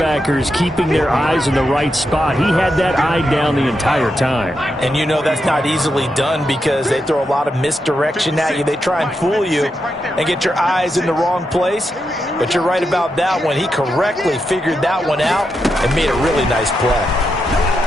keeping their eyes in the right spot, he had that eye down the entire time. And you know that's not easily done because they throw a lot of misdirection at you. They try and fool you and get your eyes in the wrong place. But you're right about that one. He correctly figured that one out and made a really nice play.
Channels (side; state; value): both; normal; correlation 0.85